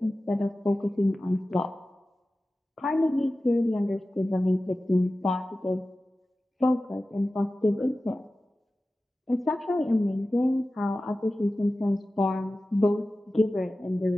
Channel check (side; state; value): both; normal; correlation 0.95